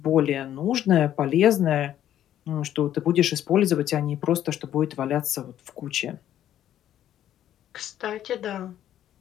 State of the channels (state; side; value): quieter; right; 11.4 dB